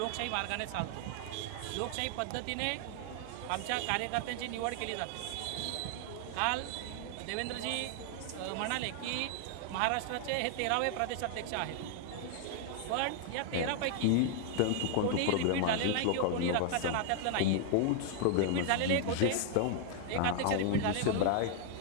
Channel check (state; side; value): different; both; correlation 0.00